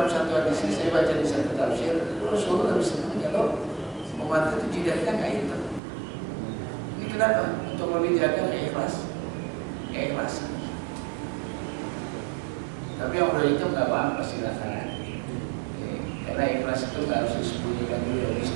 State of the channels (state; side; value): drops out; left; at 5.8 s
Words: satu hadis ini, saya baca di satu tafsir, Rasulullah lebih senang kalau umat itu jidatnya nggak hitam. Ini kenapa? Untuk lebih jaga keikhlasan. Tapi yang udah hitam nggak apa-apa silakan. Karena ikhlas itu nggak harus disembunyikan dulu,